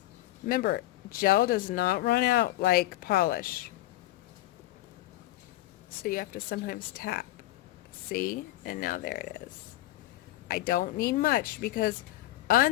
Remember, gel does not run out like polish. So you have to sometimes tap. See? And now there it is. I don't need much because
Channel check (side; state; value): right; quieter; 16.3 dB